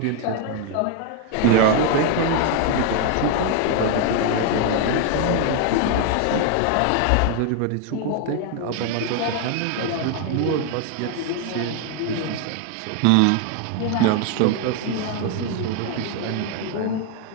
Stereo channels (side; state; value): both; different; correlation 0.01